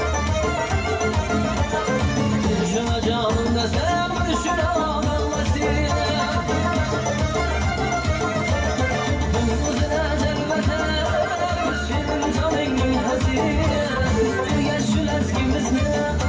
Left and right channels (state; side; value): identical; both; correlation 1.00